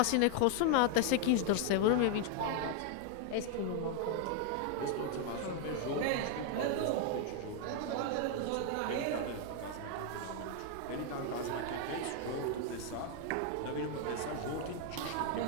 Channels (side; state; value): both; different; correlation 0.00